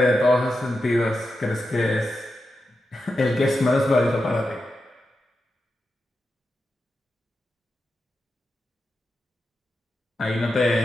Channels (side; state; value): both; normal; correlation 0.89